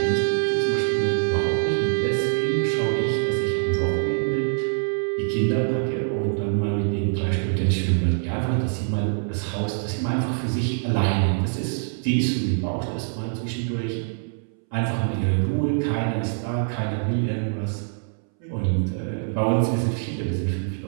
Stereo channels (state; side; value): silent; left; 62 dB below the other